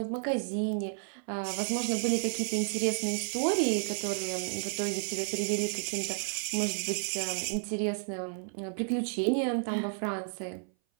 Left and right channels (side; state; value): left; silent; 57 dB below the other